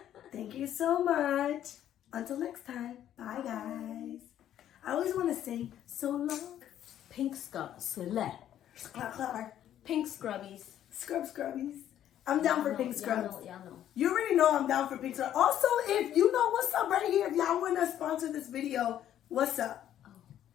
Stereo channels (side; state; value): right; quieter; 11.1 dB